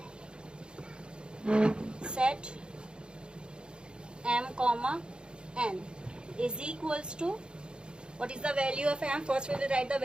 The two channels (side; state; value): left; late; 0.052 ms